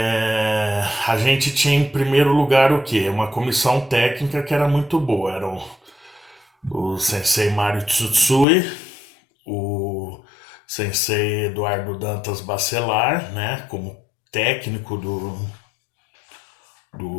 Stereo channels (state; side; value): drops out; right; at 8.5 s